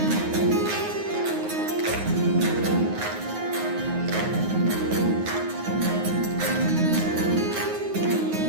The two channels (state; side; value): late; left; 9.5 ms